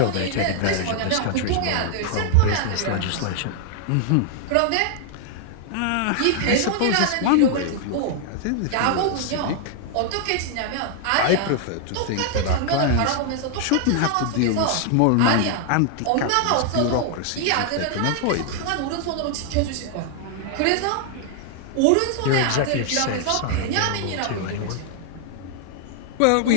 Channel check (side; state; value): both; different; correlation 0.00